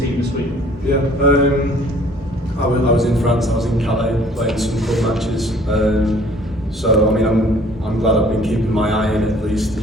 team this week. Yeah, I was in France. I was in Calais playing some club matches. So I mean, I'm glad I've been keeping my eye in at least,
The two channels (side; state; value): both; normal; correlation 0.55